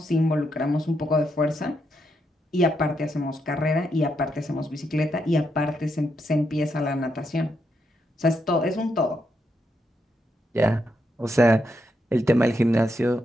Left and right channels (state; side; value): normal; both; correlation 0.81